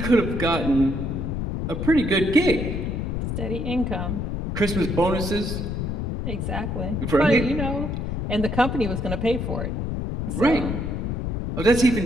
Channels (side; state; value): left; noise; rumble, 2 dB below the sound